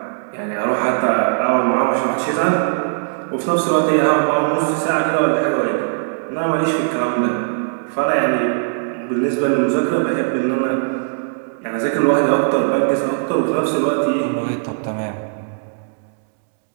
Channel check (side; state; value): left; silent; 66 dB below the other